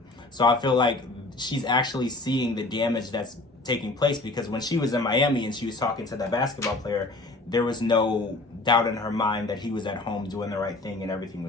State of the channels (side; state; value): right; quieter; 3.0 dB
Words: So I feel like she's actually seeing the damage that's taking place, because when she was in Miami and she was talking to that basketball player, there was no doubt in her mind that he was at home doing the right thing and everything